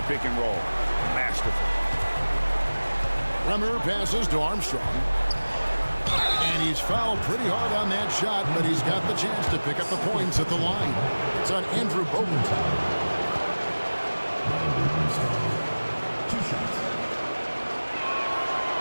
pick and roll. Masterful. Bremer passes to Armstrong. And he's fouled pretty hard on that shot, but he's got the chance to pick up the points at the line. It's on Andrew Bogut. 2 shots.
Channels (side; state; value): both; inverted; correlation -1.00